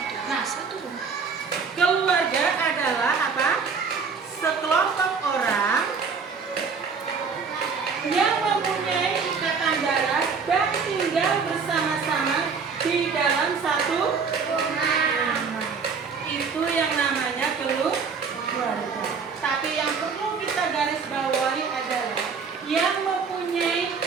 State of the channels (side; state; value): left; quieter; 5.5 dB